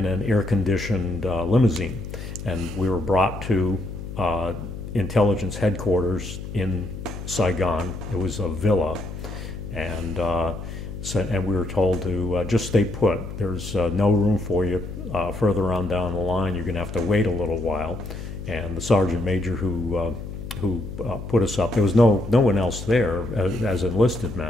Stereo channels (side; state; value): left; noise; hum, 9 dB below the sound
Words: an air-conditioned limousine, and we were brought to intelligence headquarters in Saigon. It was a villa, and and we were told to just stay put. There's no room for you further on down the line. You're going to have to wait a little while. And the sergeant major who put us up, there was no one else there as enlisted